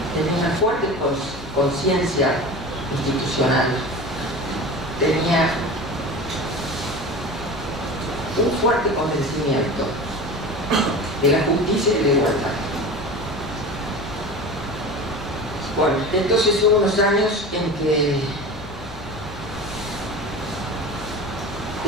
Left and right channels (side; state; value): left; noise; hum, 17 dB below the sound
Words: tenía una fuerte conciencia institucional, tenía un fuerte convencimiento de la justicia y de la igualdad. Bueno, entonces hubo unos años en que